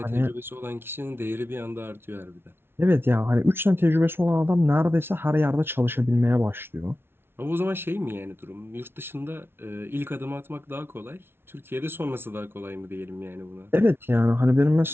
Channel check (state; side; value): late; left; 0.11 ms